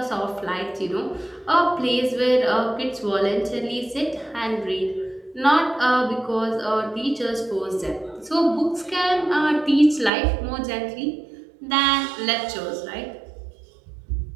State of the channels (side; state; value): left; drops out; at 10.1 s